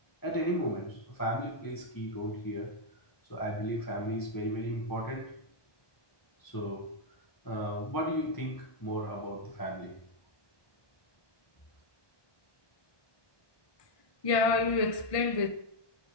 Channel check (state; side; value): late; right; 1.5 ms